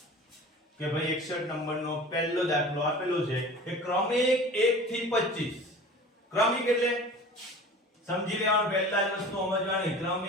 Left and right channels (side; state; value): both; normal; correlation 0.40